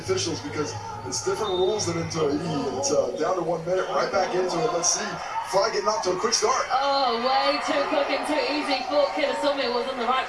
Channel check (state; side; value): identical; both; correlation 1.00